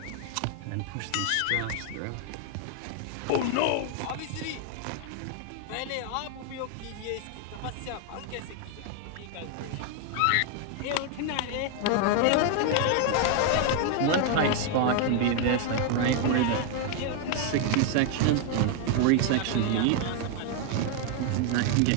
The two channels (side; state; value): both; different; correlation 0.00